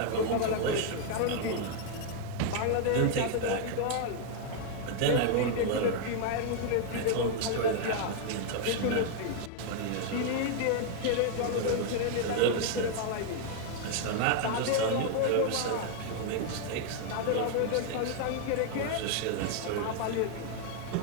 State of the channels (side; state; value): both; different; correlation 0.00